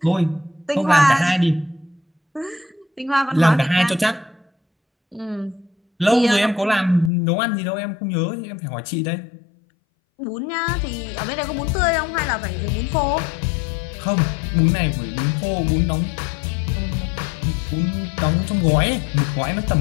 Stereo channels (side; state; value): right; drops out; at 7.1 s